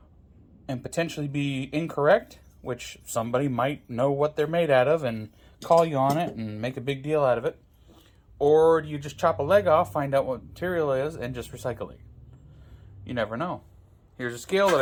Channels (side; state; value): both; identical; correlation 1.00